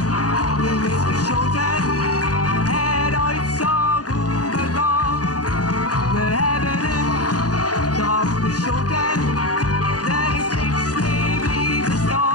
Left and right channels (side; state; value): right; late; 0.68 ms